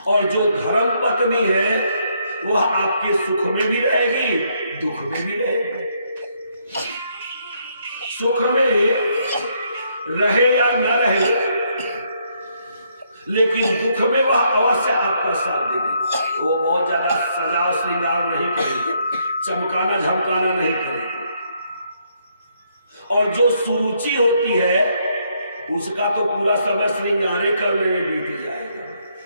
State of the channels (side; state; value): both; inverted; correlation -0.73